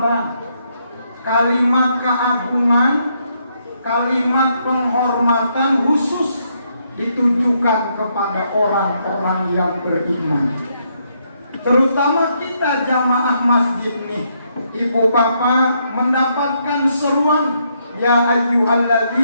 kalimat keagungan, kalimat penghormatan khusus ditujukan kepada orang-orang yang beriman. Terutama kita jamaah masjid nih, ibu bapak mendapatkan seruan ya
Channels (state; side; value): inverted; both; correlation -0.75